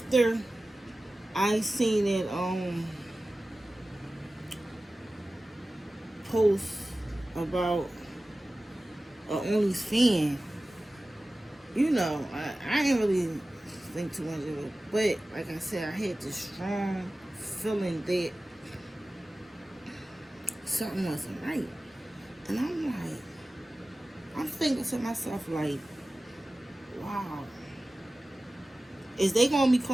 I seen it post about a OnlyFans, I didn't really think too much of it. But like I said, I had this strong feeling that something wasn't right. And I'm thinking to myself like, wow, is they gonna be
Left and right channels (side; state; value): both; normal; correlation 0.96